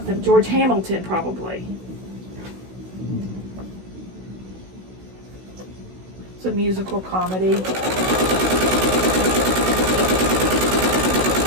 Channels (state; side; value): late; left; 16 ms